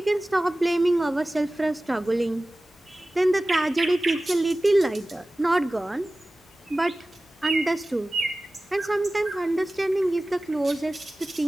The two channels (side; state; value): both; normal; correlation 0.97